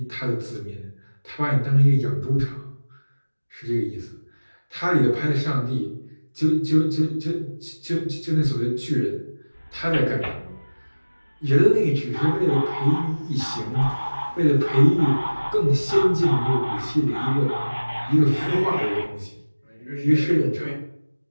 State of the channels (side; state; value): both; inverted; correlation -1.00